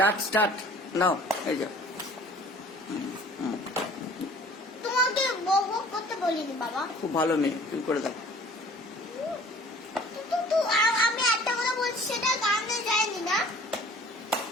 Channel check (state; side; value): normal; both; correlation 0.50